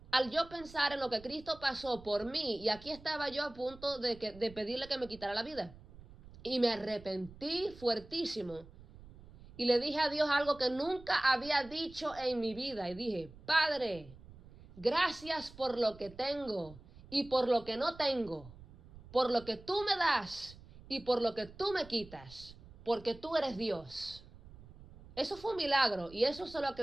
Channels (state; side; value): noise; right; rumble, 20 dB below the sound